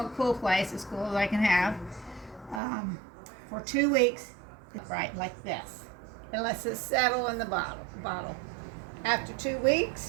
cool place, as cool as I can have, for 2 weeks, right like this. It lets it settle in the bottle. After 2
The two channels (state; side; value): drops out; left; at 2.6 s